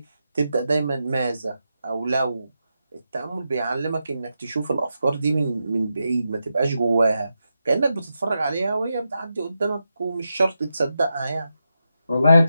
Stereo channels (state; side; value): inverted; both; correlation -0.87